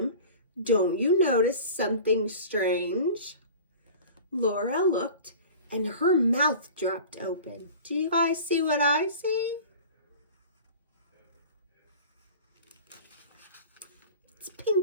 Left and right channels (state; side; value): inverted; both; correlation -0.39